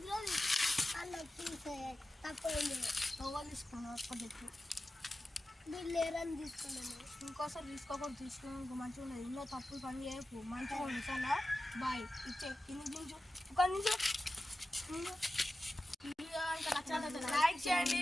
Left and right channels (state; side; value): normal; both; correlation 0.94